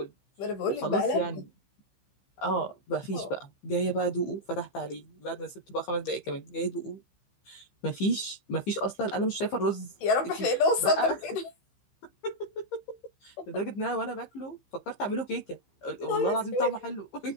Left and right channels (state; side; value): late; right; 15 ms